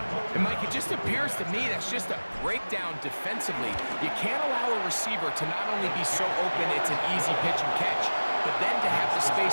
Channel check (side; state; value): both; inverted; correlation -1.00